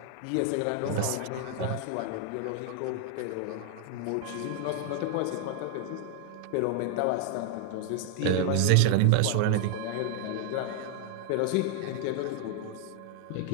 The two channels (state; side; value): different; both; correlation 0.00